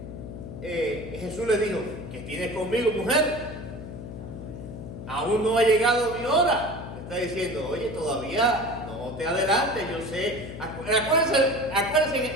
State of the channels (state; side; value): noise; left; hum, 10 dB below the sound